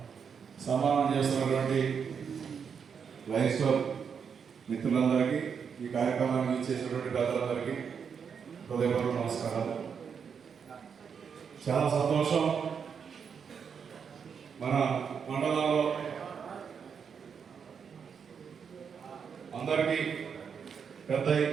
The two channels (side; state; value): left; quieter; 6.7 dB